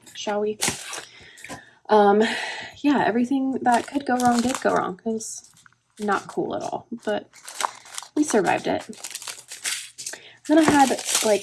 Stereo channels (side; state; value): both; identical; correlation 1.00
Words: shall we? Yeah, everything that could go wrong did go wrong. It was not cool at all, but we survived it. Then I had